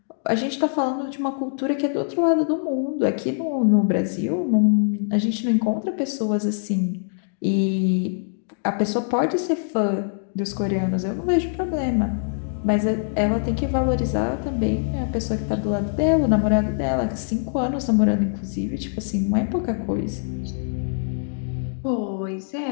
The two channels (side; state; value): right; silent; digital silence